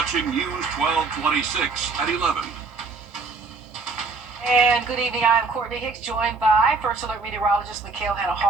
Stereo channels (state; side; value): quieter; left; 4.2 dB